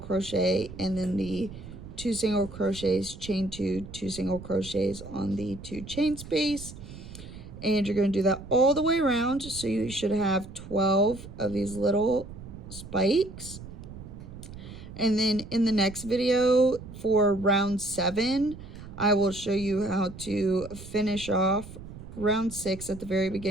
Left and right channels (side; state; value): right; noise; rumble, 14 dB below the sound